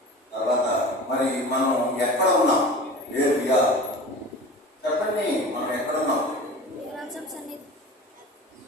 తర్వాత మరి మనం ఎక్కడ ఉన్నాం, వేర్ వి ఆర్, చెప్పండి మనం ఎక్కడ ఉన్నాం.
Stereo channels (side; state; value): both; normal; correlation 0.36